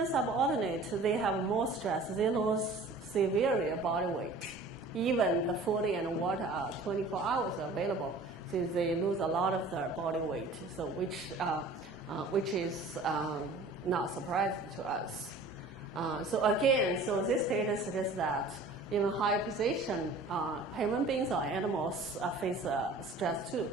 subordinate, they have more stress. They lose severe body weight. Even the food and water are 24 hours available, so they lose a lot of their body weight. So which is not surprising to us. So again, so this data suggests that even higher position, human beings or animals face stress too.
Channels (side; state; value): left; quieter; 3.1 dB